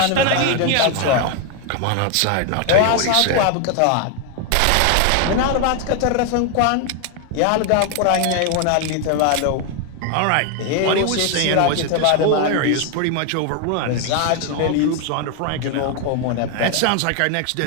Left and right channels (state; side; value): different; both; correlation 0.01